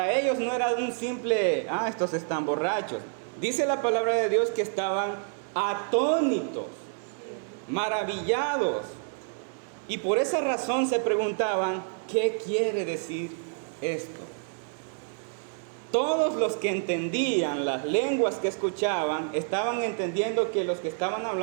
ellos no era un simple, estos están borrachos. Dice la palabra de Dios que estaban atónitos, maravillados. Y por esa razón se preguntaban, ¿qué quiere decir esto? Todos los que entendían las lenguas que escuchaban estaban entendiendo que los que estaban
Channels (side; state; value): left; silent; 59 dB below the other